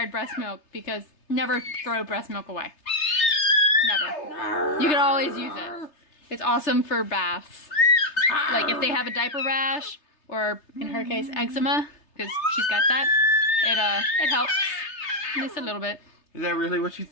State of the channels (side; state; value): right; late; 3.3 ms